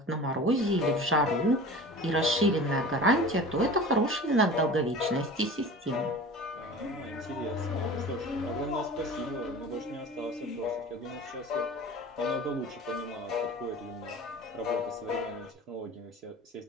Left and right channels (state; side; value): normal; both; correlation 0.38